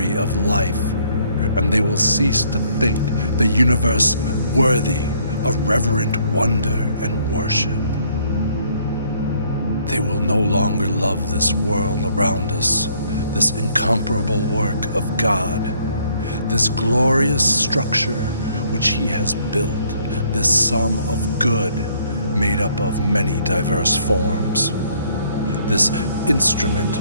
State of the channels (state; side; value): inverted; both; correlation -0.64